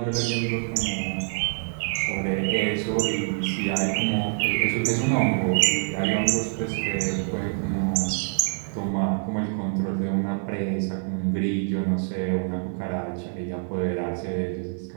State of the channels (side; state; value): left; silent; 61 dB below the other